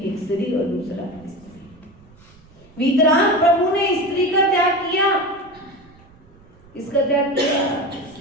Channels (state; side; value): noise; right; rumble, 26 dB below the sound